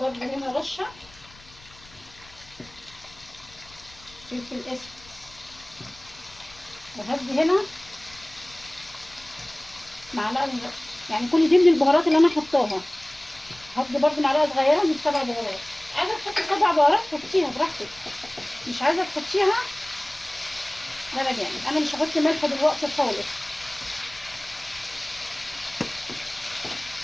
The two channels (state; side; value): noise; left; rumble, 23 dB below the sound